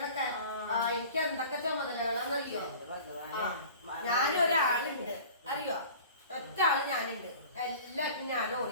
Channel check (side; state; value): both; inverted; correlation -0.43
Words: എനിക്ക് എന്തൊക്കെ ചുമതലകളാന്നറിയോ? ഞാനൊരാളുണ്ട് അറിയോ? ഒറ്റ ആള് ഞാനുണ്ട്. എല്ലാവർക്കും ഞാൻ